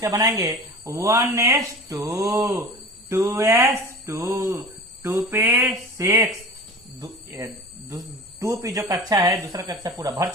बनाएंगे 1s2 2s2 2p6। 2p जो कक्षा है, दूसरा कक्षा पूरा भर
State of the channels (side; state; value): both; normal; correlation 0.36